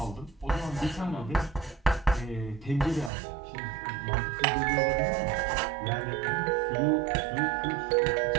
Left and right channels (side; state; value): left; drops out; at 3.1 s